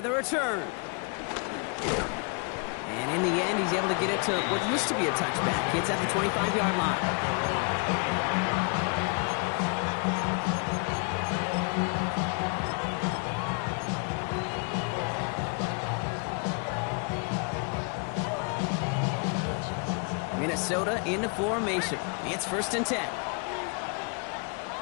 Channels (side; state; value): right; quieter; 36.2 dB